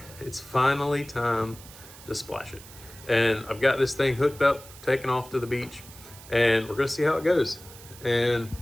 it's finally time to splash it. And I've got this thing hooked up, taken off to the beach, and we're gonna see how it goes. And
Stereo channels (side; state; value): right; noise; hiss, 18 dB below the sound